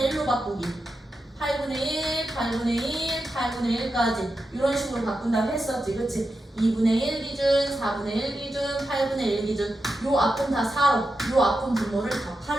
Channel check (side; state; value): both; normal; correlation 0.89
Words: 1로 바꾸기. 8분의 1, 8분의 1, 8분의 1까지 이런 식으로 바꾼다고 했었지. 그치? 2분의 1 기준, 4분의 1 기준, 8분의 1 기준. 요 앞은 다 4로, 요 앞은 분모를 다